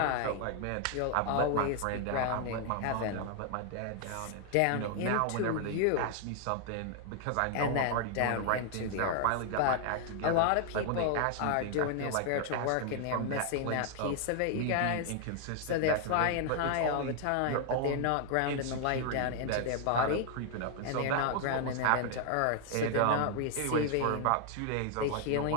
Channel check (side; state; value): both; different; correlation 0.00